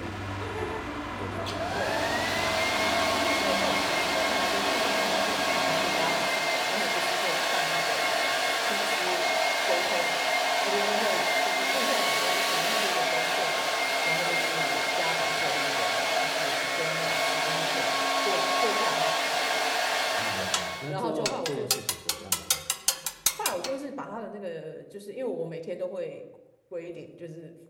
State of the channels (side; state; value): both; identical; correlation 1.00